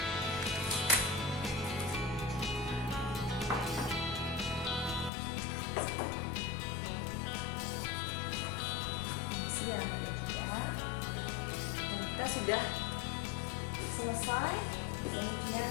Kita sudah selesai, kemudian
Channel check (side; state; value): right; drops out; at 5.1 s